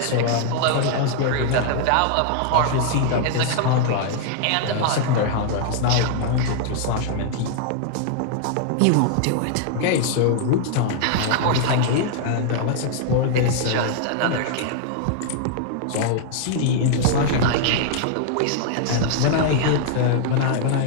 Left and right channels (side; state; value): both; different; correlation -0.01